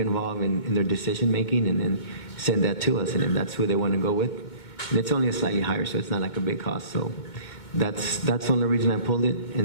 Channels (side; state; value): right; late; 2.2 ms